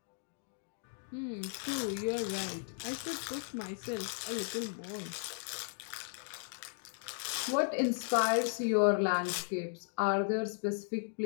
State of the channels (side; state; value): right; silent; digital silence